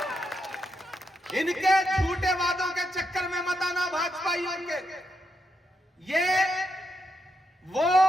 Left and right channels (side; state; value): both; normal; correlation 0.82